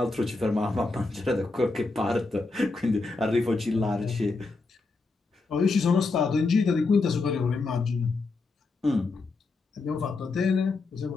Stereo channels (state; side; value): quieter; right; 3.7 dB